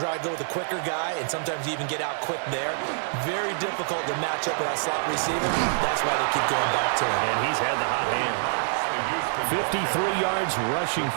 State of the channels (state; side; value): silent; left; digital silence